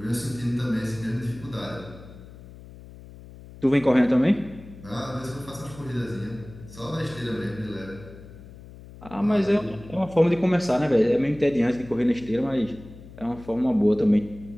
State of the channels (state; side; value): noise; left; hum, 18 dB below the sound